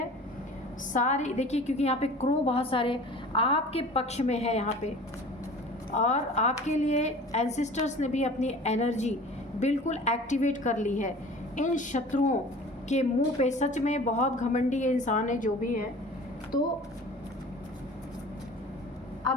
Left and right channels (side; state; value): both; normal; correlation 0.42